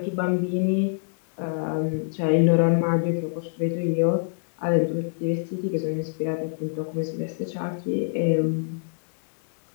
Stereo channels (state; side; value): silent; right; digital silence